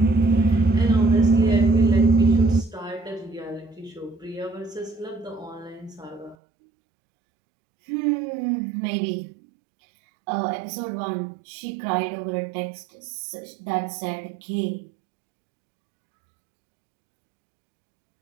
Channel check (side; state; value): left; drops out; at 6.4 s